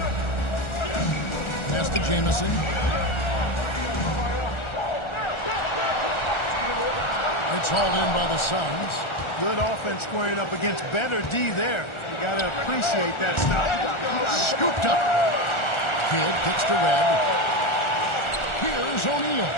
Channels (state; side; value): late; right; 1.4 ms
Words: Pass to Jamison. It's hauled in by the Suns. Good offense squaring up against better D there. You got to appreciate that stop. Scooped up. Kidd kicks to Red. Here's O'Neal.